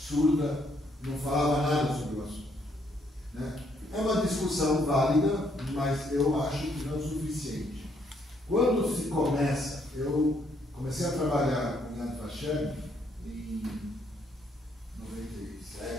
não falava nada sobre o assunto. Né? É uma discussão válida, mas eu acho que não é o suficiente. Quando se começa, eu comecei a trabalhar com Yad Vashem em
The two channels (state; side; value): normal; both; correlation 0.71